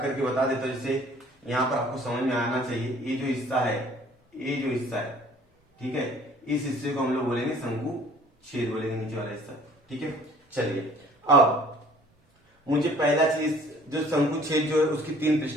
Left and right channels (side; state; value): both; normal; correlation 0.54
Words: करके बता देता हूं, जिससे यहां पर आपको समझ में आना चाहिए। ये जो हिस्सा है, ये जो हिस्सा है, ठीक है, इस हिस्से को हम लोग बोलेंगे शंकु छेद बोलेंगे, नीचे वाला हिस्सा। ठीक है, चलिए अब मुझे पहला चीज, जो शंकु छेद जो है उसकी तीन